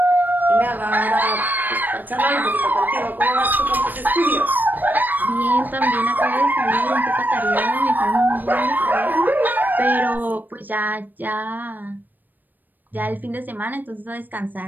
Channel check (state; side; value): late; left; 0.088 ms